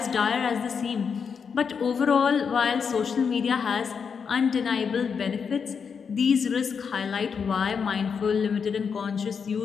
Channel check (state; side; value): quieter; right; 6.3 dB